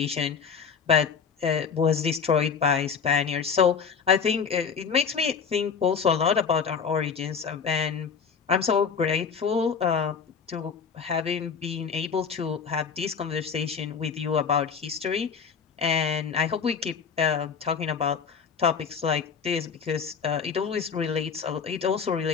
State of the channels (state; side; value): quieter; right; 6.2 dB